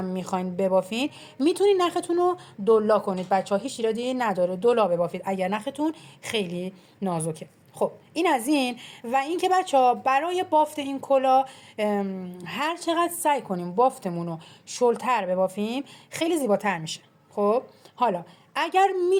میخواین ببافین میتونید نختون رو دولا کنید بچه ها، هیچ ایرادی نداره دولا ببافید اگر نختون خیلی نازکه. خب این از این. و اینکه بچه ها برای بافت این کلاه هر چقدر سعی کنیم بافتمون رو شلتر ببافیم خیلی زیباتر میشه. خب حالا اگر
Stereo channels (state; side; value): identical; both; correlation 1.00